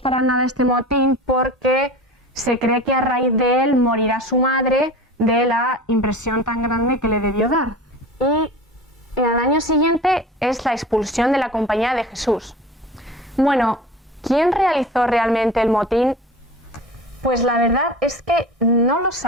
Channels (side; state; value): both; normal; correlation 0.36